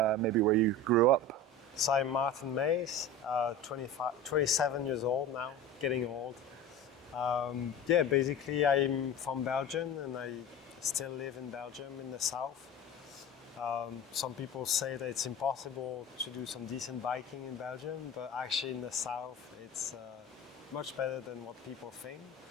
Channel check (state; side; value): normal; both; correlation 0.32